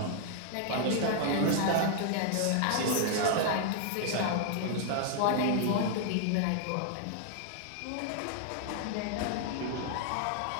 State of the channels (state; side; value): different; both; correlation -0.01